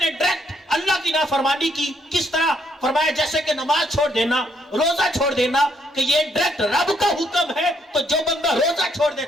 نے ڈائریکٹ اللہ کی نافرمانی کی، کس طرح؟ فرمایا جیسے کہ نماز چھوڑ دینا، روزہ چھوڑ دینا، کہ یہ ڈائریکٹ رب کا حکم ہے، تو جو بندہ روزہ چھوڑ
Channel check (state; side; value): normal; both; correlation 0.71